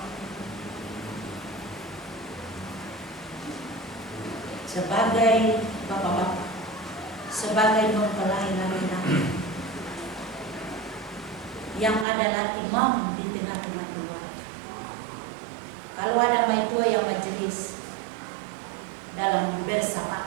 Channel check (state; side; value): drops out; left; at 12.1 s